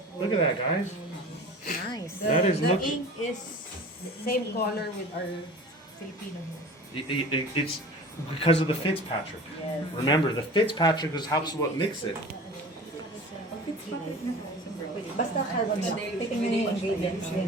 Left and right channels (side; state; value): both; normal; correlation 0.39